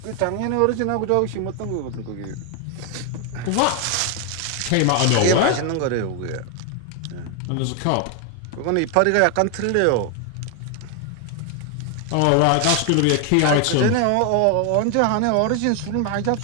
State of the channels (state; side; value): different; both; correlation 0.01